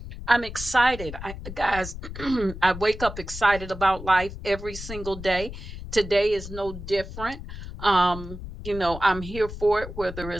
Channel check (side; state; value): left; noise; rumble, 10 dB below the sound